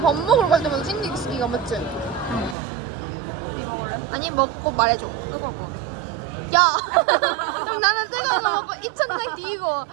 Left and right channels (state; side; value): drops out; left; at 2.6 s